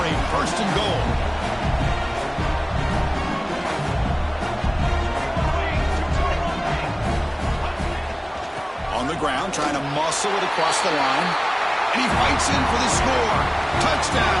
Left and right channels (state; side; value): identical; both; correlation 1.00